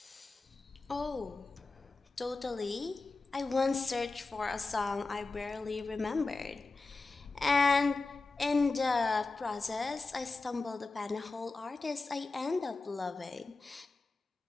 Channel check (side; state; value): right; quieter; 3.7 dB